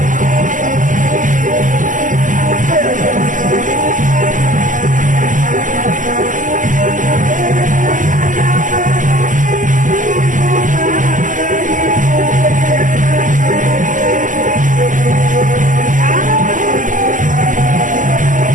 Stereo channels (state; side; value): late; left; 0.38 ms